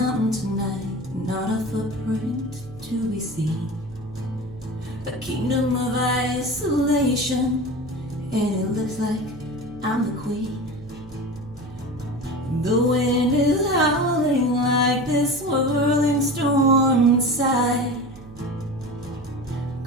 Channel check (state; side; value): noise; right; hum, 18 dB below the sound